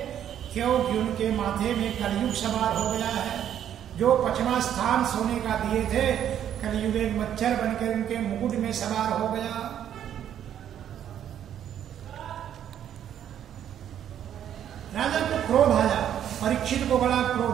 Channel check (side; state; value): left; quieter; 10.1 dB